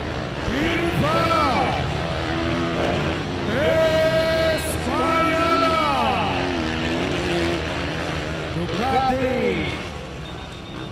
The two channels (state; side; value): identical; both; correlation 1.00